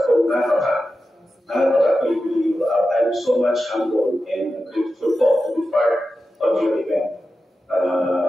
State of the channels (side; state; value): both; normal; correlation 0.92